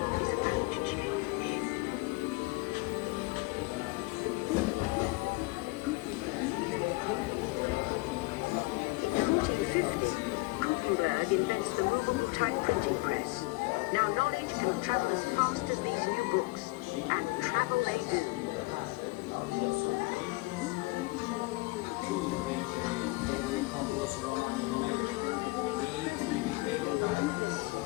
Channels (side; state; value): right; quieter; 23.8 dB